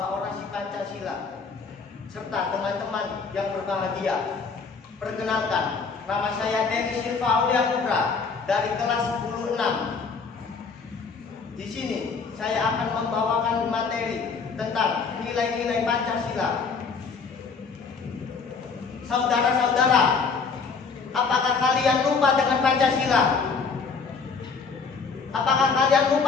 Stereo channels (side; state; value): right; quieter; 5.1 dB